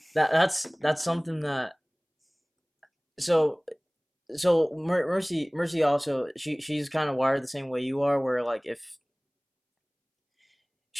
that's something that so Mercy also she's kind of wired the same way you are, where like if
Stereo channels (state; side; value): identical; both; correlation 1.00